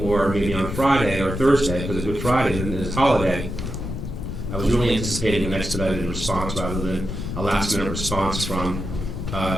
maybe on Friday or Thursday, because it's Good Friday and it's holiday. I was really anticipating an expedited response rather than a last-minute response from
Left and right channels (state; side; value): noise; left; rumble, 5 dB below the sound